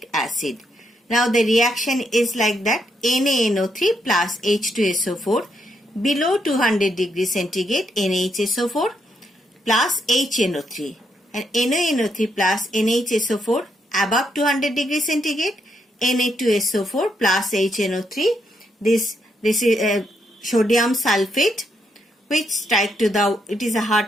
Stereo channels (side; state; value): both; normal; correlation 0.78